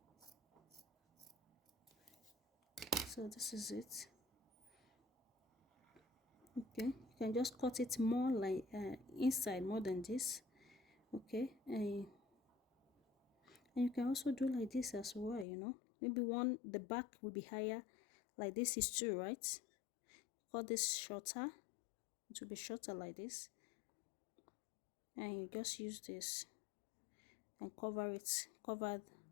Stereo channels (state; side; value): drops out; right; at 15.5 s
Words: So this is it. Okay, you can just cut it more like inside more than this. Okay, and you can also do like this as well, you know. Maybe the back will be higher, like this is 2, right? Cut this shorter, it will be shorter like this, and you just use this and cover